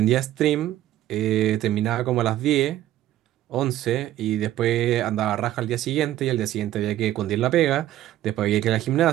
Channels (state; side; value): quieter; left; 13.5 dB